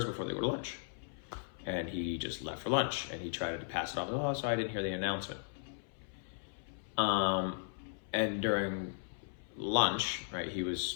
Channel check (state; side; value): silent; right; 53 dB below the other